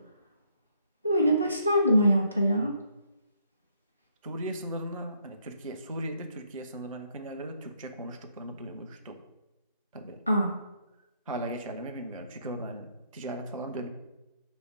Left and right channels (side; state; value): both; inverted; correlation -0.70